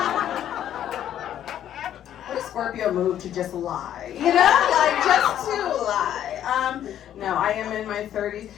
What a Scorpio move to just lie, you know? Like, just to lie. No, I am in my 30s.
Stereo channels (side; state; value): right; quieter; 10.8 dB